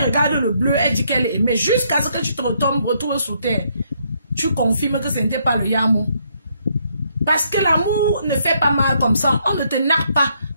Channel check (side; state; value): both; inverted; correlation -0.72